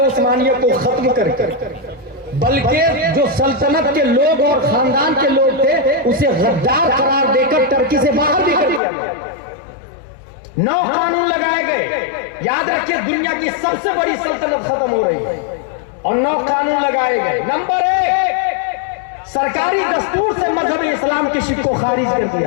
उस्मानिया को खत्म करके, बल्कि जो सल्तनत के लोग और खानदान के लोग थे उसे गद्दार करार देकर टर्की से बाहर भी कर दिया गया। 9 कानून लगाए गए। याद रखिए, दुनिया की सबसे बड़ी सल्तनत खत्म हो रही है और 9 कानून लगाए गए। नंबर 1, सरकारी दस्तूर से मजहब इस्लाम की शिर्क को खारिज कर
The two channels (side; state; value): right; drops out; at 8.8 s